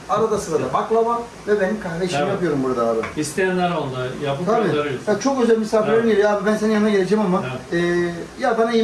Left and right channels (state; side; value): identical; both; correlation 1.00